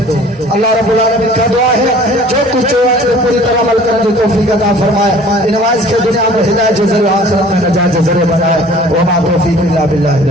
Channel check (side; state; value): both; normal; correlation 0.49